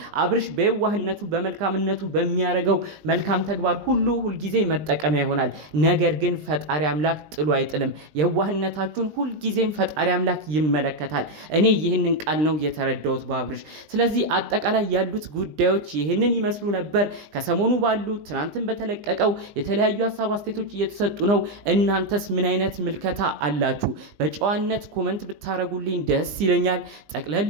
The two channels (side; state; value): left; late; 20 ms